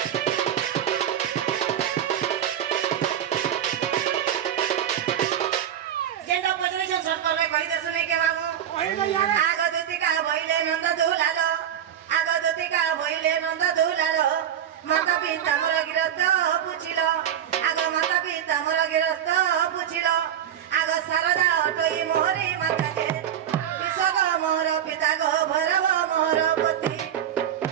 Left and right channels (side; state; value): left; quieter; 9.9 dB